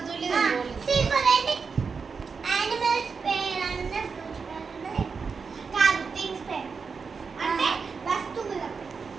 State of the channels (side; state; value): left; quieter; 5.3 dB